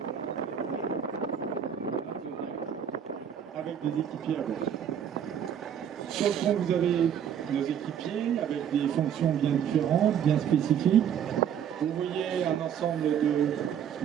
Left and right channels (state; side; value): quieter; left; 8.8 dB